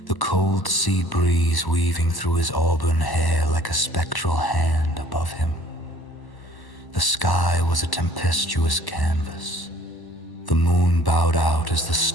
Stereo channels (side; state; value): right; late; 1.1 ms